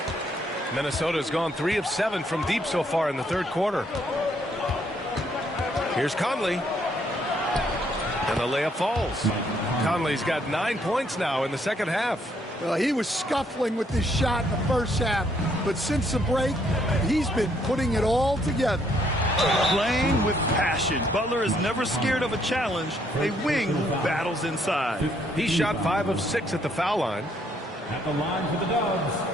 Minnesota's gone 3 of 7 from deep so far in the third quarter. Here's Conley. And the layup falls. Conley's got 9 points now in the second half. Well, he was scuffling with this shot in the first half, but since the break, he's been putting it all together. Playing with passion. Butler is never scared of a challenge. A wing who battles inside. He shot 5 of 6 at the foul line. At the line for the Dubs,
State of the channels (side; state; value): both; normal; correlation 0.69